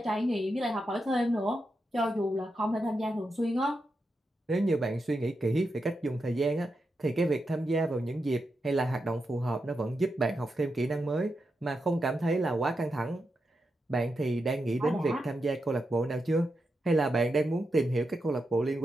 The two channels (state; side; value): normal; both; correlation 0.87